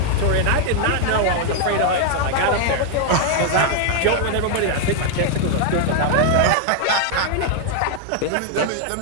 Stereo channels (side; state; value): both; different; correlation 0.00